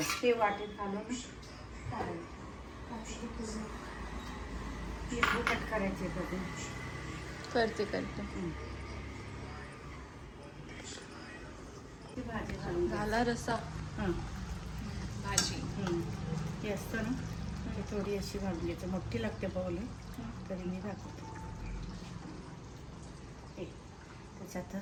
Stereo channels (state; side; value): identical; both; correlation 1.00